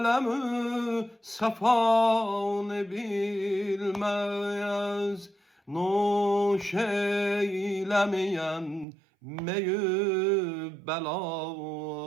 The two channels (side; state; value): left; drops out; at 8.8 s